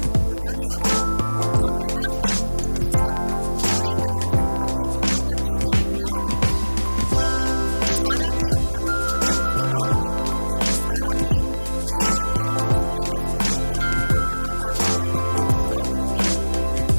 बता दें आपको, अमृता सिंह इस वक्त पूरी तरह से अपने दोनों बच्चों से वो प्यार करती है। बेटी सारा के अपकमिंग प्रोजेक्ट्स के बारे में, बेटी सारा के रिलेशनशिप स्टेटस को लेकर अमृता काफी ज्यादा कंसर्न रहती हैं।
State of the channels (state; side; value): inverted; both; correlation -1.00